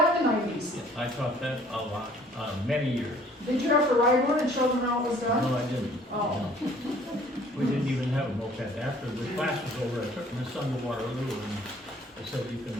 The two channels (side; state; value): both; normal; correlation 0.56